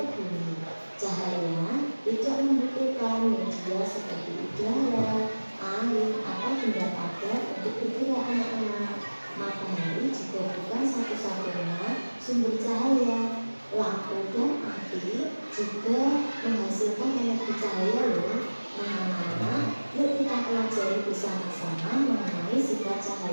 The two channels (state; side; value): inverted; both; correlation -1.00